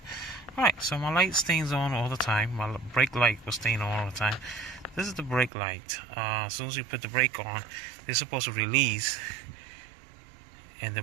Alright, so my light stays on all the time. My brake light was staying on all the time. This is the brake light. As soon as you put the brake on, it's supposed to release, and the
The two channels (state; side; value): drops out; left; at 5.5 s